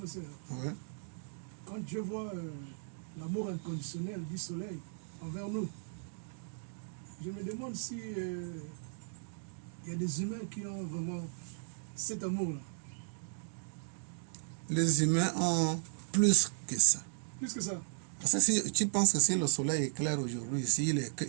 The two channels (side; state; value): left; silent; digital silence